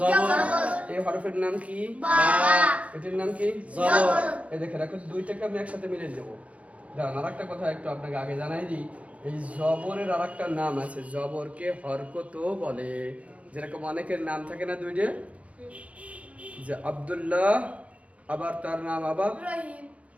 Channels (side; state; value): left; late; 0.065 ms